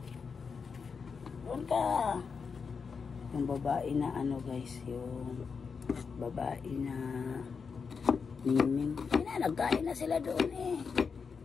Doon ka. Yung babae na ano, guys, yung babae na Ming. Ay na, nagkain na sila doon eh.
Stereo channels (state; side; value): quieter; right; 5.5 dB